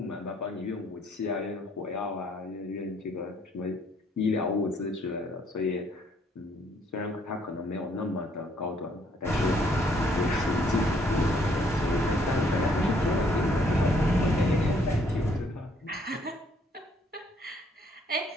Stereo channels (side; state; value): both; normal; correlation 0.66